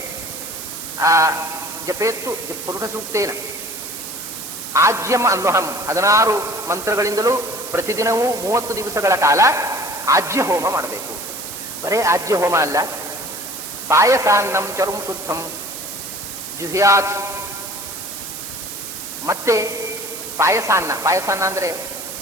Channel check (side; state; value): right; noise; hiss, 9 dB below the sound